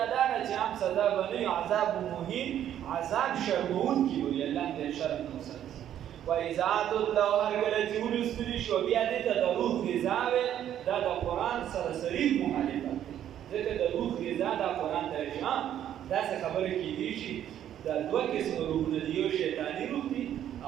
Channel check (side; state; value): left; quieter; 10.7 dB